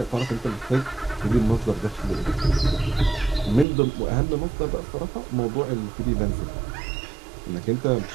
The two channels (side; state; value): left; drops out; at 3.7 s